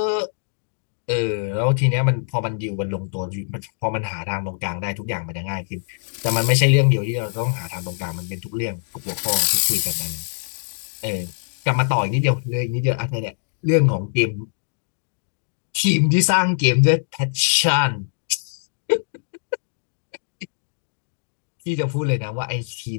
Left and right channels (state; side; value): silent; right; digital silence